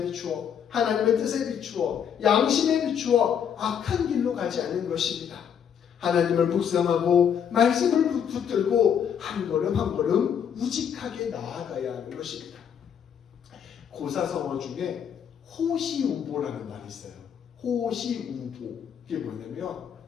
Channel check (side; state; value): right; quieter; 8.1 dB